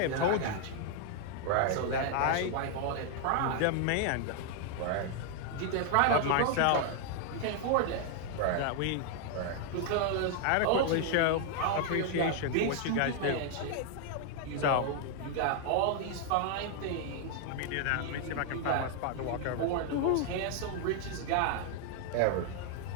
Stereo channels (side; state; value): both; different; correlation 0.00